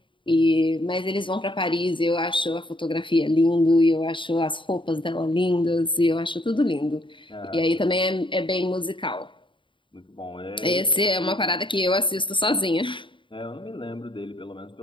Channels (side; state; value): right; late; 0.24 ms